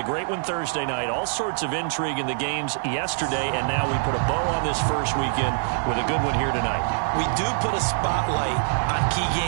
great one Thursday night. All sorts of intrigue in the games yesterday, and now we put a bow on this first weekend with a good one here tonight. We do put a spotlight on key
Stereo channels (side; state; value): left; silent; 62 dB below the other